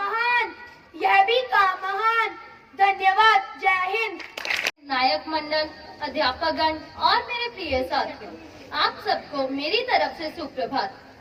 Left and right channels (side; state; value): both; identical; correlation 1.00